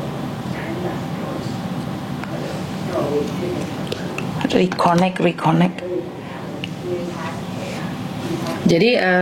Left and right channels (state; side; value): identical; both; correlation 1.00